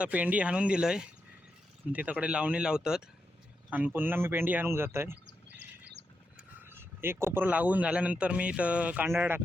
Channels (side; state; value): both; normal; correlation 0.85